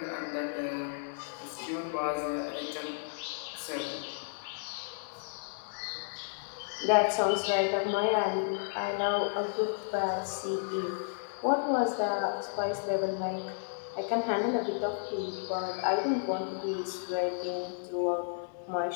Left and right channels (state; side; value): silent; right; digital silence